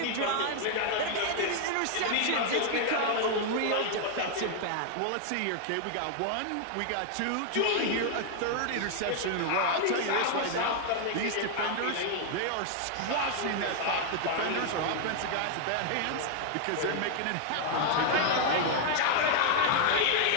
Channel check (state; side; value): different; both; correlation 0.00